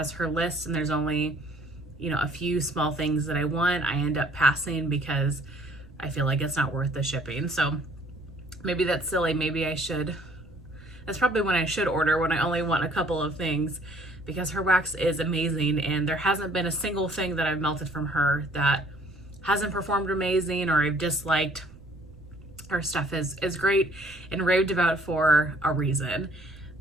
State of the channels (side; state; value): right; noise; rumble, 23 dB below the sound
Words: her list and there's only a few small things that I want, I end up passing because I feel like it's not worth the shipping. So maybe that's silly. Maybe I should, that's probably when I should order, when I only want a couple of things, because her wax is amazing and there hasn't been a single thing that I've melted from her that hasn't performed amazing or I've disliked. Her stuff is great and raved about for a reason.